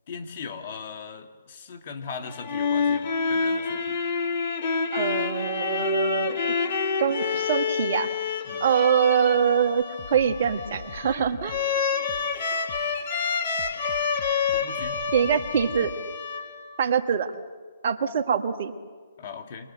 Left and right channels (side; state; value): both; inverted; correlation -0.56